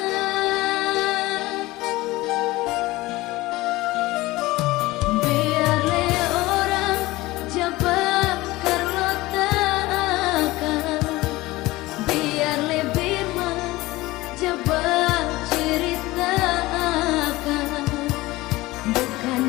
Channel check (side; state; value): right; quieter; 19.5 dB